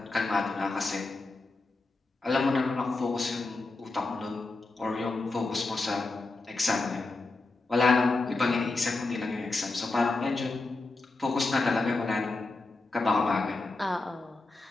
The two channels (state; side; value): quieter; right; 3.4 dB